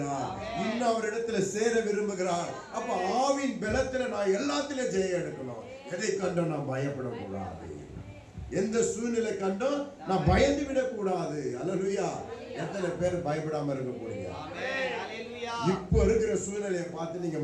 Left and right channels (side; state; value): both; identical; correlation 1.00